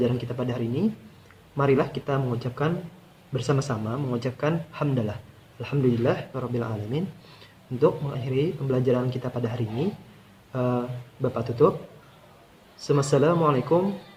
kita pada hari ini, marilah kita bersama-sama mengucapkan hamdalah, alhamdulillah rabbil alamin. Untuk mengakhiri pembelajaran kita pada hari ini, Bapak tutup. Assalamualaikum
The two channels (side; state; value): both; identical; correlation 1.00